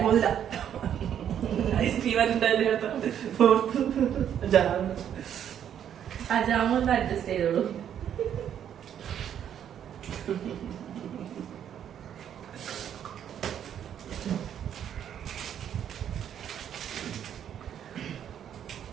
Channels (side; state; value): left; quieter; 9.5 dB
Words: പോന്നില്ല. ആ ജാമൊന്ന് അഡ്ജസ്റ്റ് ചെയ്തോളൂ.